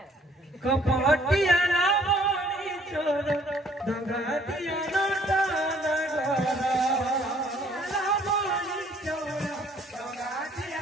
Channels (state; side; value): normal; both; correlation 0.61